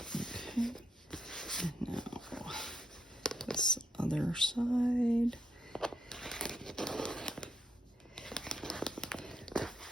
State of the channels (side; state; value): both; normal; correlation 0.78